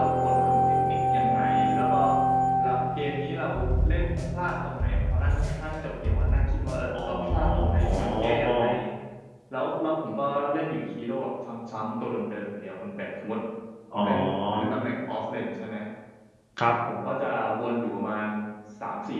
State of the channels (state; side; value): identical; both; correlation 1.00